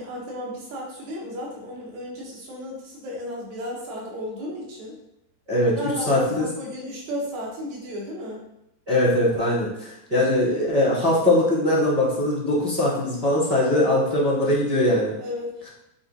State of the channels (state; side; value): late; left; 9.0 ms